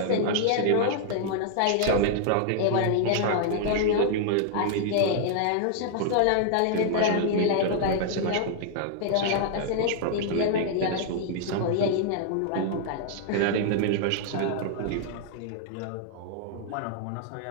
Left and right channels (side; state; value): both; different; correlation -0.01